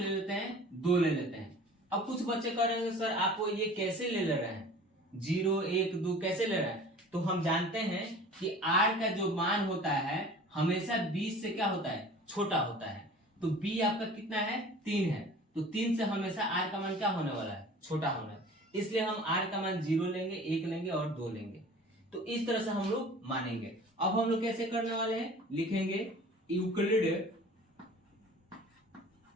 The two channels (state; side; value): normal; both; correlation 0.44